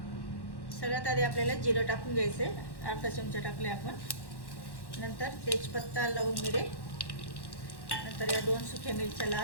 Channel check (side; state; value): right; late; 1.1 ms